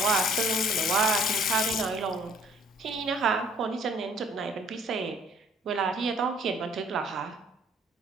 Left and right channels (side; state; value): both; normal; correlation 0.58